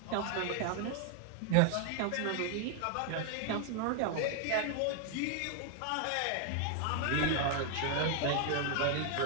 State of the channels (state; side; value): different; both; correlation 0.00